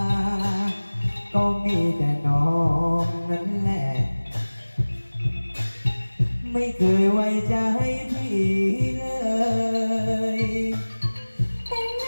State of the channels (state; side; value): inverted; both; correlation -1.00